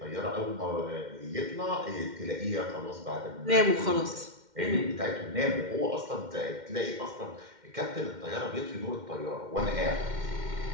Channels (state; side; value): late; left; 2.1 ms